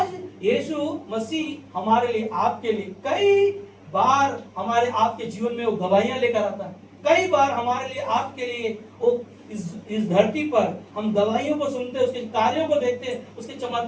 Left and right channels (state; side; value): identical; both; correlation 1.00